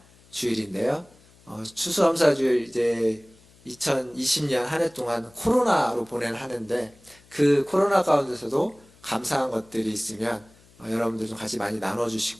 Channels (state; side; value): noise; left; hum, 28 dB below the sound